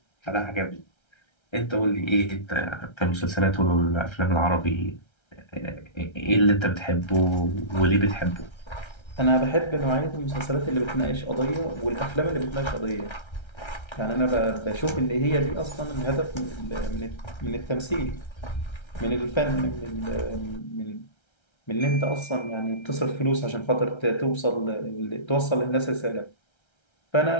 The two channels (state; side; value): late; right; 1.3 ms